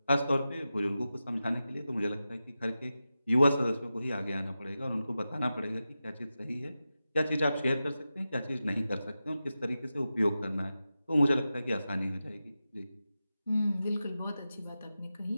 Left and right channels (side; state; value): both; inverted; correlation -0.92